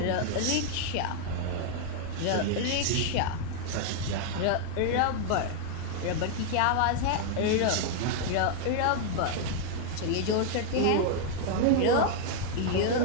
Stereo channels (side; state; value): both; different; correlation 0.00